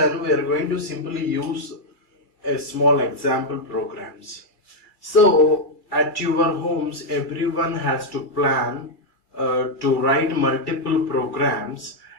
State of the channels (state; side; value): late; right; 2.3 ms